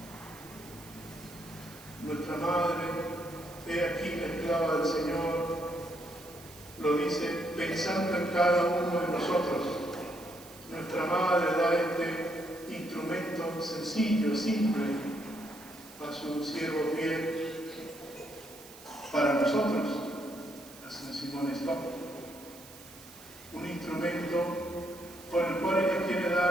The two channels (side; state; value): right; noise; hiss, 19 dB below the sound